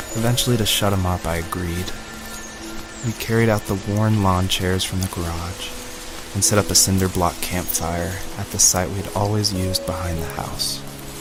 Eventually, to shut him up, I agreed. We carried out the worn lawn chairs from the garage and set up a cinder block campfire at the site we had always used behind the house.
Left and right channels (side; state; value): both; identical; correlation 1.00